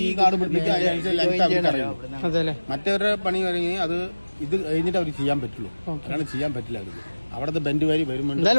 ഈ കാട് അതെ അല്ലേ? മറ്റവരുടെ പണി കഴിഞ്ഞ് അത് ഇത് കഴിഞ്ഞിട്ട് അവർ ചെയ്യാൻ പറ്റുള്ളൂ. അങ്ങനെ ചെയ്യാൻ പറ്റില്ല. അവർക്ക് അവിടുത്തെ ബെൻഡ് വരി വരുമ്പോൾ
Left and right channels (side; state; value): both; inverted; correlation -1.00